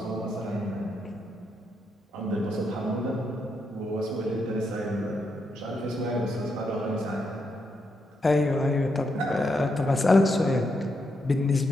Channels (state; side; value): normal; both; correlation 0.81